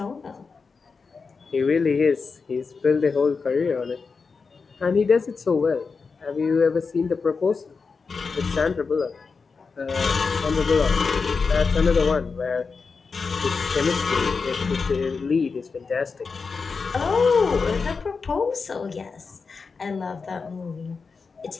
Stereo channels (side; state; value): right; quieter; 4.8 dB